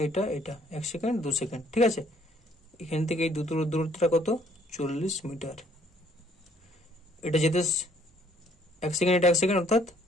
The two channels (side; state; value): both; normal; correlation 0.63